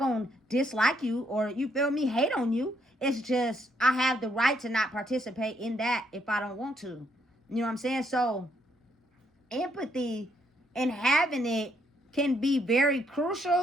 dislike you, or, you feel me, hate on you. It's just I have the right to not participate in that if I don't want to. You know what I'm saying? So empathy and having it can be very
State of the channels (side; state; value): both; normal; correlation 0.73